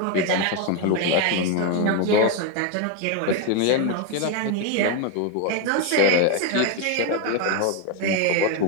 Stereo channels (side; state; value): both; different; correlation 0.02